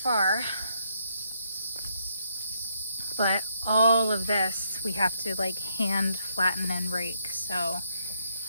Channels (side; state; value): both; inverted; correlation -0.74